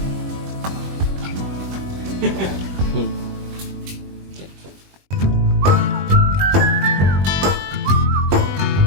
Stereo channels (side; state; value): left; late; 21 ms